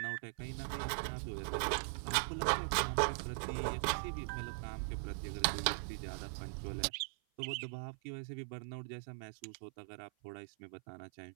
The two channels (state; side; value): silent; left; 51 dB below the other